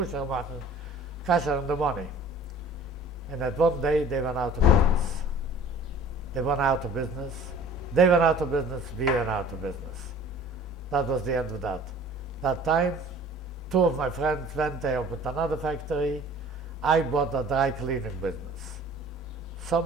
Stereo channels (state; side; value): normal; both; correlation 0.47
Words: the money. And at one day they went out of business. They went out of business. They went out of business. We went out of business. That was the end of that. That time, 2 of my friends went, they opened another factory. I bought a dry cleaning business.